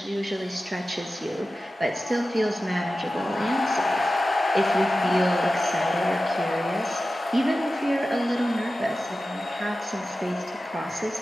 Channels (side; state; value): both; normal; correlation 0.94